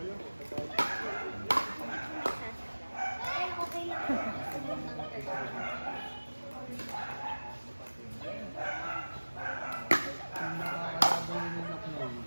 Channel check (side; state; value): both; inverted; correlation -1.00